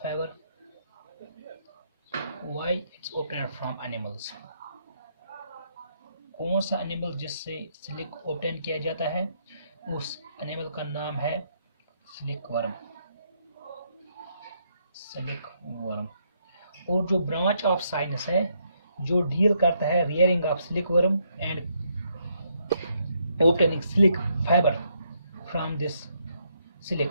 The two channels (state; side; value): inverted; both; correlation -0.75